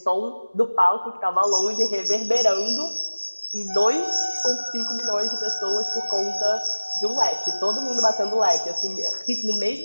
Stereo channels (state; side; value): inverted; both; correlation -1.00